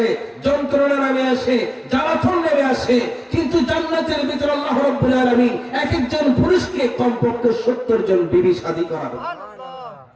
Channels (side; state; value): both; identical; correlation 1.00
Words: যন্ত্রণা নেমে আসে, জ্বালাতন নেমে আসে। কিন্তু জান্নাতের ভিতরে আল্লাহ রাব্বুল আলামিন এক একজন পুরুষকে কমপক্ষে 70 জন বিবি শাদী করাবে।